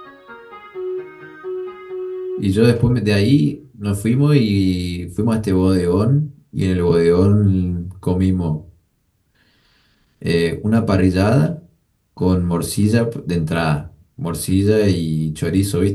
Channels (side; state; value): both; identical; correlation 1.00